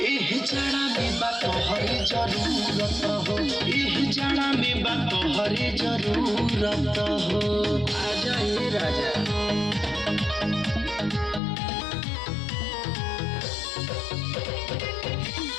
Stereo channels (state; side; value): drops out; right; at 11.4 s